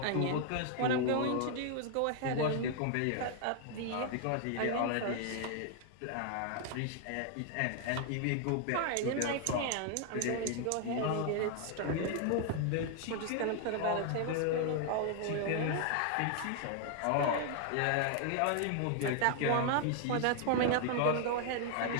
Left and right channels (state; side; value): different; both; correlation 0.00